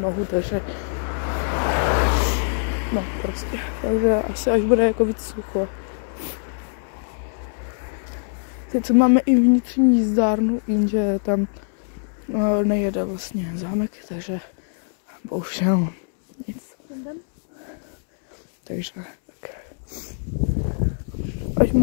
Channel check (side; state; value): right; silent; 63 dB below the other